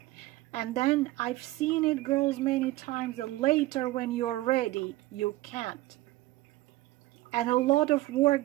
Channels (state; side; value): quieter; left; 17.7 dB